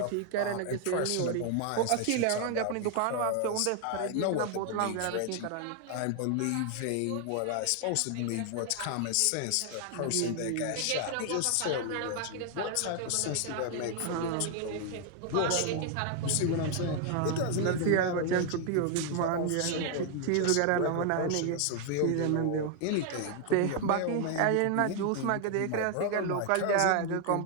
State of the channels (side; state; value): both; different; correlation 0.00